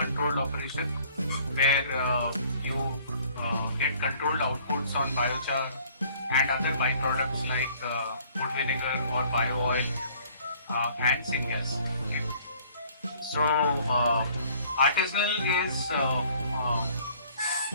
operation where you get controlled outputs on biochar and other byproducts like wood vinegar or bio oil and syngas. Okay. So artisanal is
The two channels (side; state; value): both; inverted; correlation -0.56